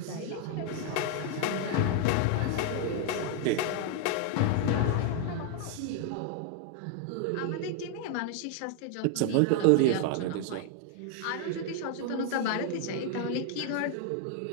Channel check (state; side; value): different; both; correlation 0.00